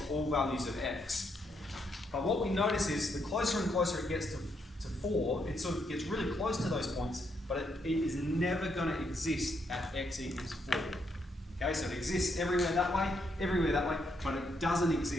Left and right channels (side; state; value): both; normal; correlation 0.77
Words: all values of x. But what we notice is the closer and closer it gets to 4, it sort of gets really close to those points, but it is never going to exist at x equals 4. Okay, so it exists everywhere that way, but it doesn't